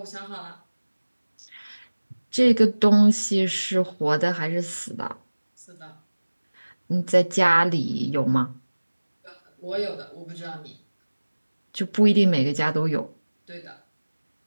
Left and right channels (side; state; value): both; inverted; correlation -1.00